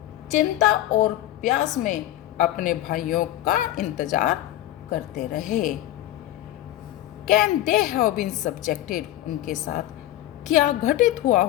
चिंता और प्यास में अपने भाइयों का इंतजार करते रहे। Can they have been subjected, उनके साथ क्या घटित हुआ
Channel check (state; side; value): quieter; right; 14.2 dB